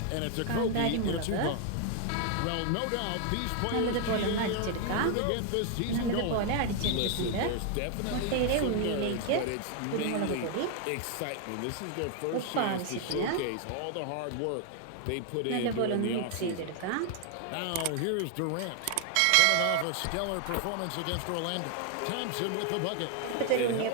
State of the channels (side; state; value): both; different; correlation 0.00